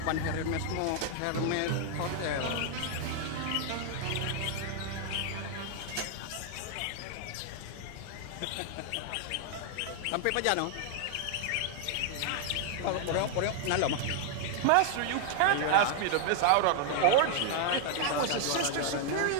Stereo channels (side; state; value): both; different; correlation 0.00